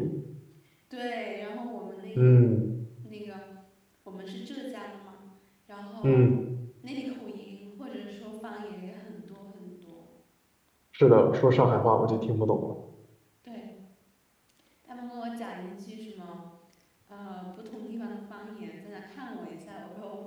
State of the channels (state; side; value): identical; both; correlation 1.00